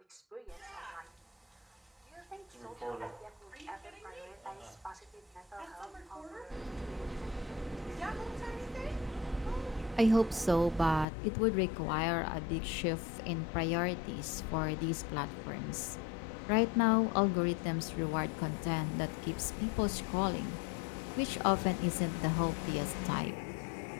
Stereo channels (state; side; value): drops out; right; at 11.1 s